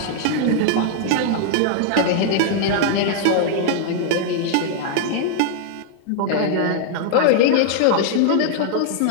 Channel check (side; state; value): both; different; correlation -0.01